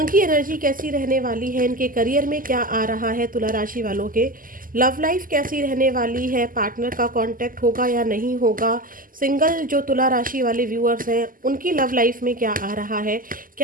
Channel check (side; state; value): left; late; 0.41 ms